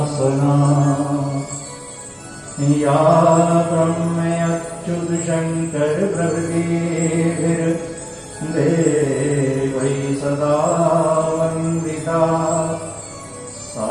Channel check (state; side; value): identical; both; correlation 1.00